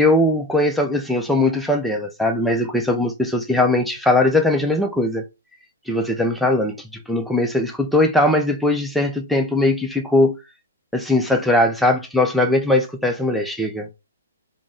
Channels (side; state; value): both; normal; correlation 0.43